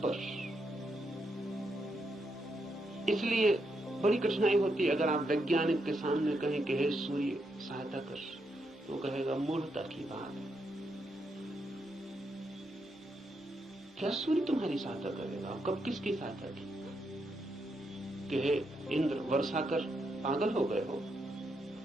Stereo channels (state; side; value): normal; both; correlation 0.81